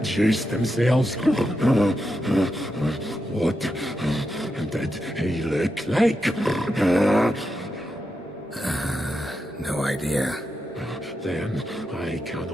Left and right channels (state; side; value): normal; both; correlation 0.86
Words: themselves. What did he look like? No idea. Then I